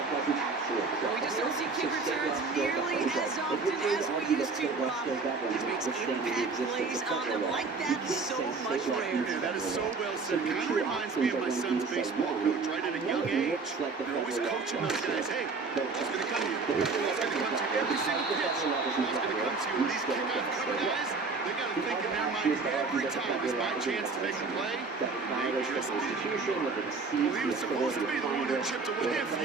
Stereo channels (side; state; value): left; quieter; 4.3 dB